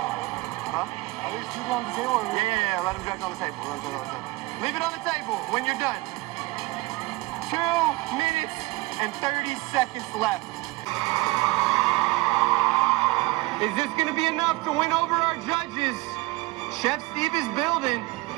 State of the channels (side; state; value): left; quieter; 21.9 dB